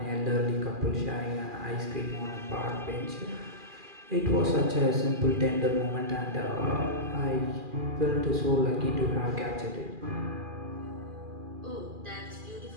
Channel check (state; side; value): late; left; 2.4 ms